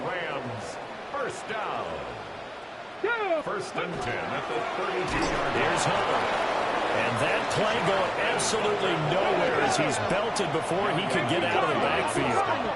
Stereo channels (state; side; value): identical; both; correlation 1.00